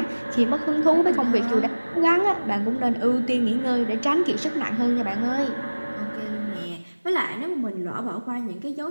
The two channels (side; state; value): both; inverted; correlation -1.00